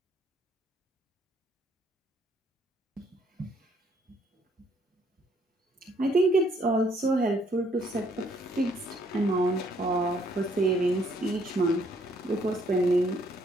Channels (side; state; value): both; normal; correlation 0.67